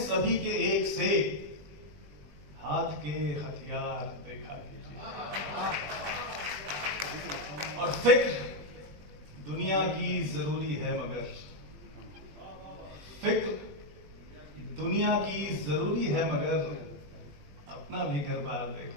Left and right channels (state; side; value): late; left; 20 ms